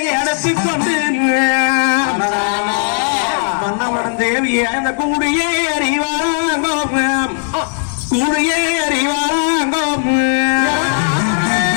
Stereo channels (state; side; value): silent; right; digital silence